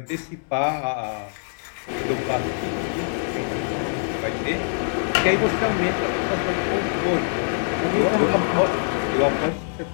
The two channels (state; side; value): silent; right; digital silence